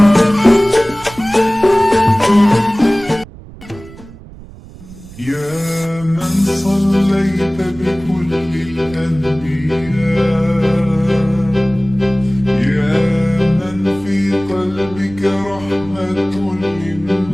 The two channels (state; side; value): noise; right; rumble, 18 dB below the sound